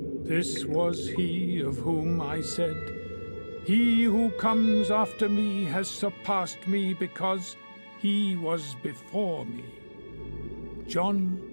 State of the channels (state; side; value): inverted; both; correlation -1.00